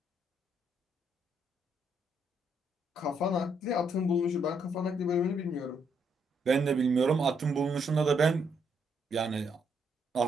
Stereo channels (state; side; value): normal; both; correlation 0.74